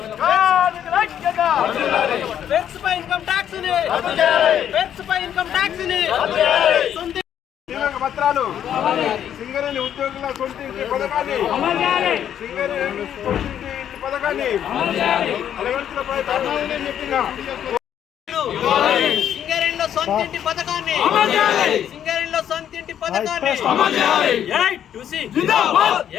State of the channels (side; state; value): right; quieter; 9.8 dB